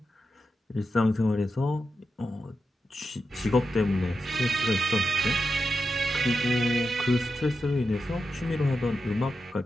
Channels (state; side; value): normal; both; correlation 0.88